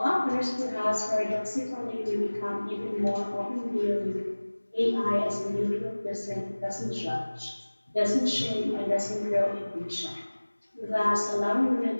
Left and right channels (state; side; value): inverted; both; correlation -1.00